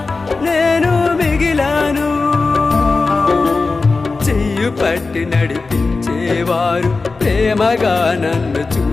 నేను మిగిలాను. చెయ్యి పట్టి నడిపించేవారు, ప్రేమగా నన్ను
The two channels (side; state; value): right; quieter; 3.9 dB